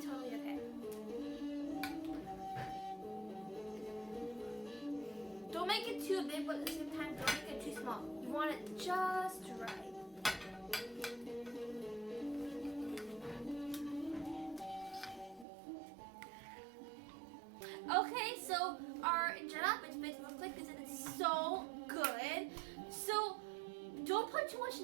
okay. Don't make it too big, but at the same time, don't make it too small. You want it just right. Okay, so our Injera Fitfit looks like this and it's so good. So don't put too much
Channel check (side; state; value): left; drops out; at 15.5 s